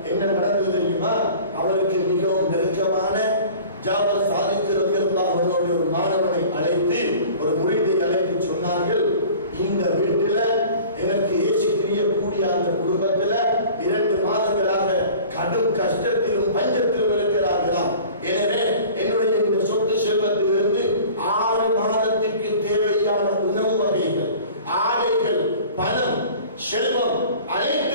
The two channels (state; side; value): inverted; both; correlation -0.43